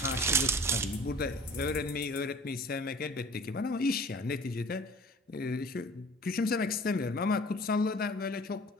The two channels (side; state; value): both; normal; correlation 0.47